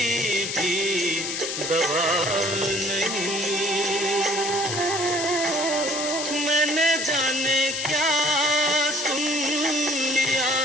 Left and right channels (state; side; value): noise; left; hiss, 3 dB below the sound